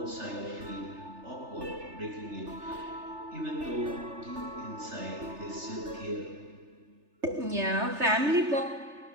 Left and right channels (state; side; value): late; left; 3.3 ms